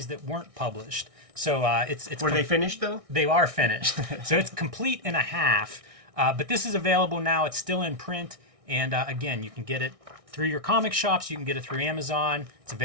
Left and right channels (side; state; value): left; late; 1.6 ms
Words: that weren't published. So it's Were they finished, though? They are finished. So it's complete in a half. But this is available now. It's still in print. And again, you can get it through your comic shops. You can get it through Amazon. It's